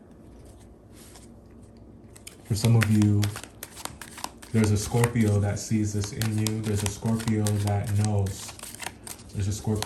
For some of you, there's a Scorpio that sees this in you. There's a Scorpio that knows. There's a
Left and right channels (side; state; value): both; identical; correlation 1.00